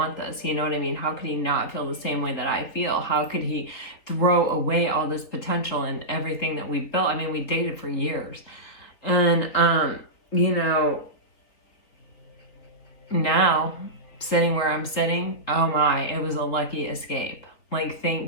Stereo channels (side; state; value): right; late; 3.9 ms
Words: this? You know what I mean? How could he not feel the same way that I feel? How could he throw away all this potential and everything that we built? I mean, we dated for years. And you know, now sitting where I'm sitting, oh my, it was a lucky escape. Like,